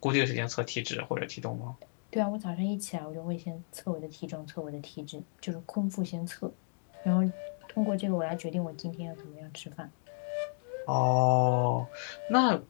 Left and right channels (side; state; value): right; silent; digital silence